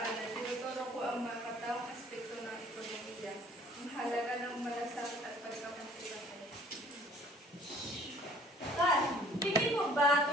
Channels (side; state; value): both; normal; correlation 0.54